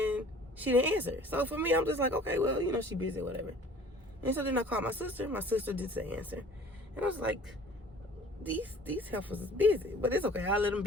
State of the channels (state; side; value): normal; both; correlation 0.50